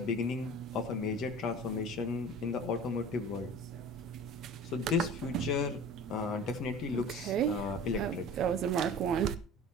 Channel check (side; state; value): both; normal; correlation 0.39